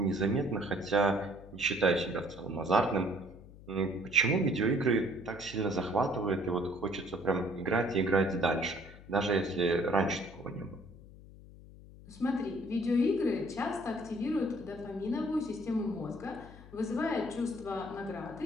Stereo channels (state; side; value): noise; left; hum, 19 dB below the sound